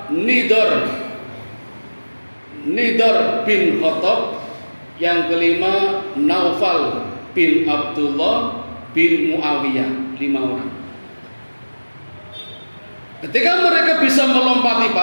Nidar bin Khattab, yang kelima Naufal bin Abdullah bin Muawiyah. 5 orang. Ketika mereka bisa melompati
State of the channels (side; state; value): both; inverted; correlation -1.00